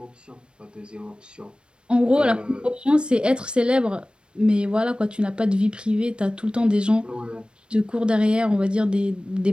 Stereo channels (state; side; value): late; left; 0.054 ms